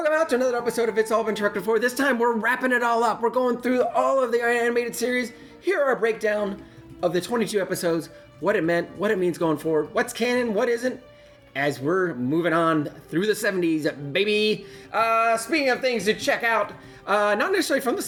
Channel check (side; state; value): both; identical; correlation 1.00